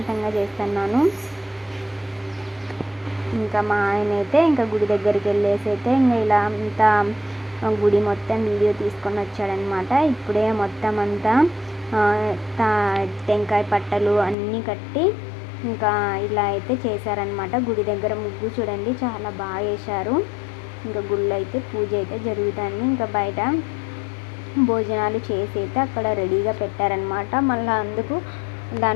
చేస్తున్నాను. ఇంకా మా ఆయన అయితే ఇంకా గుడి దగ్గరికి వెళ్ళేసి అయితే ఇంకా ఇలా అంతా గుడి మొత్తం వీడియో తీసుకొని వచ్చాడనమాట. ఇప్పుడే మొత్తం అంతా టెంకాయ పట్టలు అన్నీ కట్టి ఇంకా ఇలా అయితే చేశారనమాట. గుడి దగ్గర ముగ్గు చూడండి చాలా బాగా వేశారు. ఇంకా గుళ్ళు అయితే పూజ అయితే జరుగుతుంది. ఇంకా బయట భోజనాలు చేసి అయితే అక్కడ రెడీగా పెట్టారనమాట. మళ్ళీ అందుకు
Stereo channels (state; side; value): drops out; right; at 14.4 s